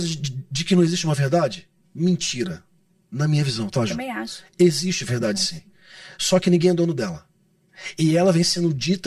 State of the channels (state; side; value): identical; both; correlation 1.00